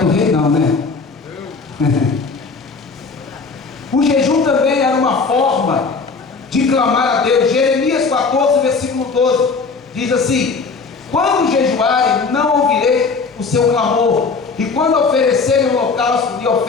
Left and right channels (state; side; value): quieter; right; 4.6 dB